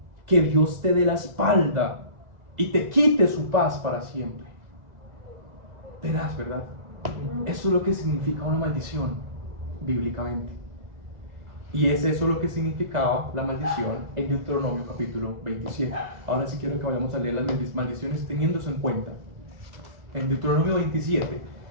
Que Dios te dé la espalda y te quite su paz para siempre. Tenaz, ¿verdad? Eso es lo que significa una maldición bíblicamente. Y es eso lo que significaba la maldición en Deuteronomio capítulo 27. Ahora sí quiero que vayamos a leer las maldiciones teniendo eso en cuenta. En Deuteronomio 27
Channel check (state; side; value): late; left; 2.0 ms